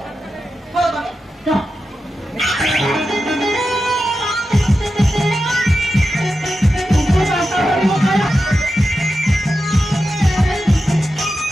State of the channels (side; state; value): both; normal; correlation 0.90